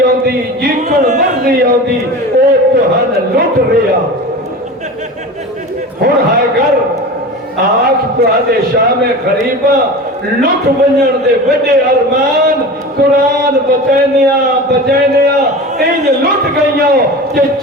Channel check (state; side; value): normal; both; correlation 0.32